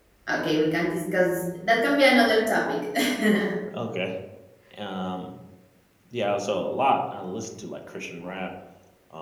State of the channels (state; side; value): identical; both; correlation 1.00